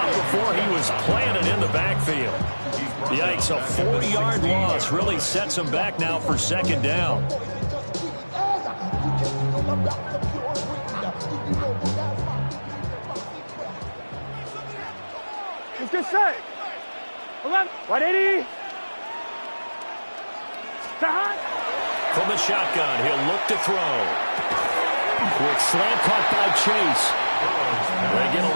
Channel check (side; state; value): both; inverted; correlation -1.00